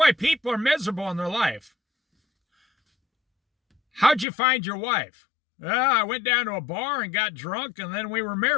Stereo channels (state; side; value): drops out; right; at 4.2 s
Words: people are miserable in their life. How'd you find your wife? I went down to a bar and got drunk, and then we were